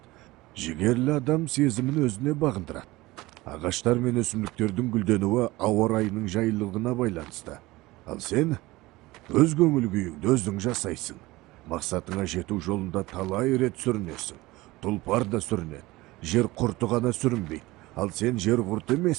Жігерлі адам сезімін өзіне бағындырады. Ағаштар мен өсімдіктердің гүлденуі ауа райының жайлылығына байланысты. Ал сен өз көңіл күйіңді өзің жасайсың. Мақсатыңа жету жолында талай рет сүрінесің. Тұлпар да сүрінеді. Жер құрты ғана сүрінбейді. Ал сен жер құрты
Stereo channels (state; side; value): quieter; left; 19.9 dB